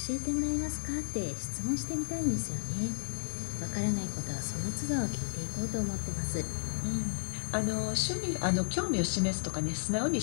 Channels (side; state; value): right; silent; digital silence